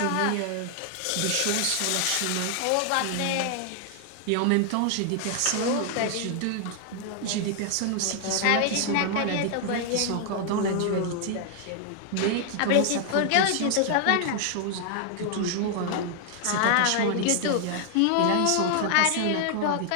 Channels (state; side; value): different; both; correlation 0.00